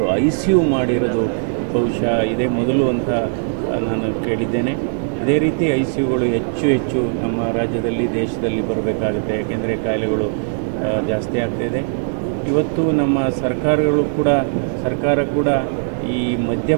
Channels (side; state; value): left; silent; 60 dB below the other